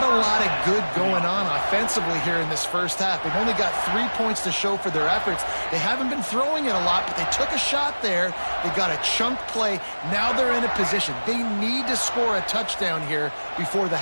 a lot of good going on offensively here in this first half. They've only got 3 points to show for their efforts. They haven't been throwing it a lot, but they took a shot there. They got a chunk play. Now they're in a position. They need to score a touchdown here before the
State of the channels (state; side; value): inverted; both; correlation -1.00